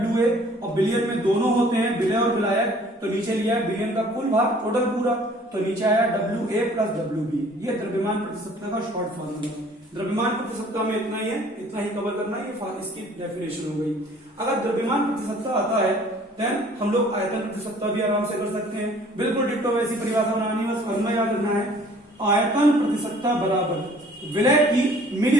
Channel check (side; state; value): both; normal; correlation 0.54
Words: और विलियन में दोनों होते हैं विलय और विलायक, तो नीचे लिया है विलियन का कुल भार टोटल पूरा, तो नीचे आया WA प्लस WB। ये द्रव्यमान प्रति सत्ता का शॉर्ट फॉर्मूला। द्रव्यमान प्रति सत्ता में इतना ही है, इतना ही कवर करना है, ये इसकी डेफिनेशन हो गई। अगर द्रव्यमान प्रति सत्ता आता है देन हम लोग आयतन प्रति सत्ता भी आराम से कर सकते हैं। बिल्कुल डिट्टो वैसी परिभाषा बनानी है, बस फॉर्मूला याद रखना है। आयतन प्रति सत्ता बराबर विलय की